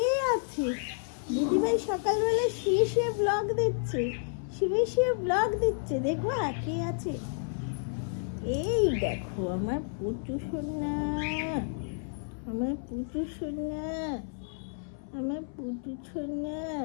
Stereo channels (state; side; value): silent; right; 57 dB below the other